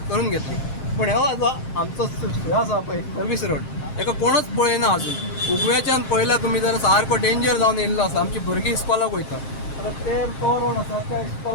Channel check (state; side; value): late; right; 7.5 ms